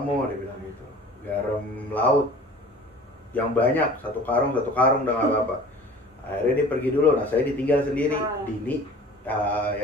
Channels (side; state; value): both; normal; correlation 0.44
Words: Dia bilang gitu. Garam laut yang banyak, 1 karung udah nggak apa-apa. Akhirnya dia pergi dulu. Nah, saya ditinggal sendiri. Dini